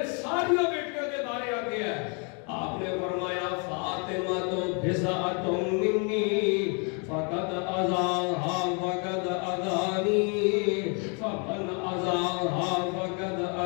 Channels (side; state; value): right; quieter; 36.5 dB